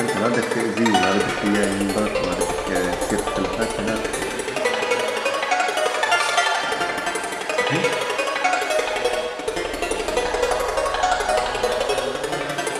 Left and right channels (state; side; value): identical; both; correlation 1.00